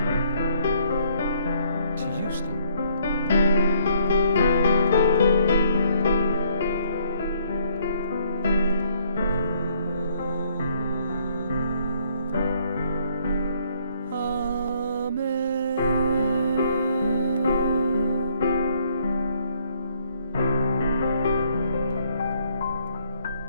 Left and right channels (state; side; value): inverted; both; correlation -0.67